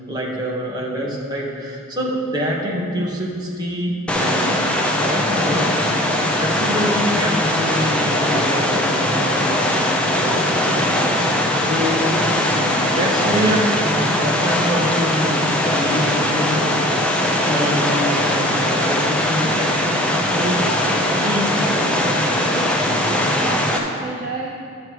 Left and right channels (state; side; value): normal; both; correlation 0.43